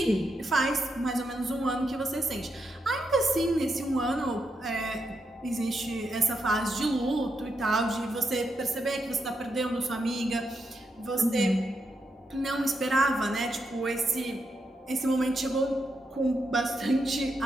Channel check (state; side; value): normal; both; correlation 0.83